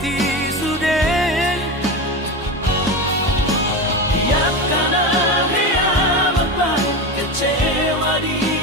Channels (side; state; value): both; normal; correlation 0.21